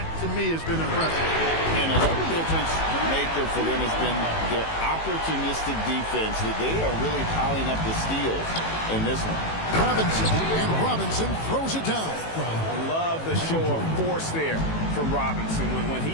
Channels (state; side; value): late; right; 18 ms